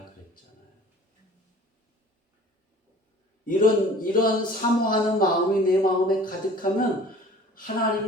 그랬잖아요. 이런 사모하는 마음이 내 마음에 가득하면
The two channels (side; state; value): both; normal; correlation 0.47